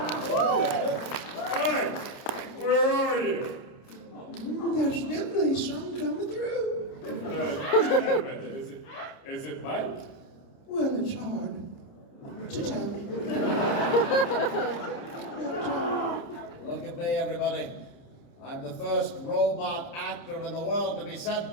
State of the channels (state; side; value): late; right; 29 ms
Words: Mike, where are you? There's definitely some coming through. Is it Mike? Well, it's hard to tell. Look at me, everybody. I'm the first robot actor in the world to be sent